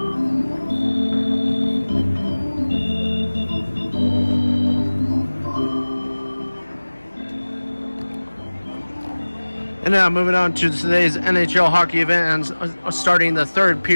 And now moving on to today's NHL hockey event and starting the third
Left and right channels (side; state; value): both; inverted; correlation -1.00